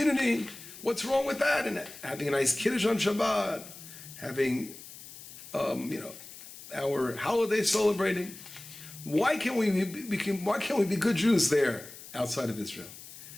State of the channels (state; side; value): noise; left; hiss, 16 dB below the sound